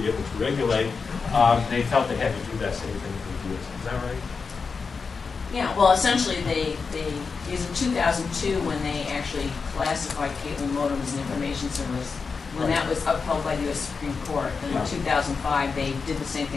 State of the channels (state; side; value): quieter; right; 5.0 dB